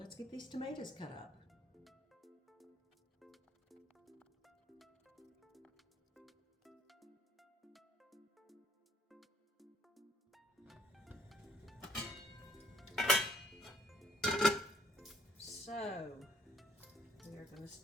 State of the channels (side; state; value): both; normal; correlation 0.62